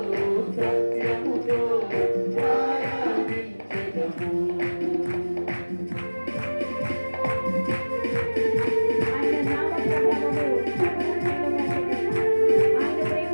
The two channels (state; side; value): inverted; both; correlation -1.00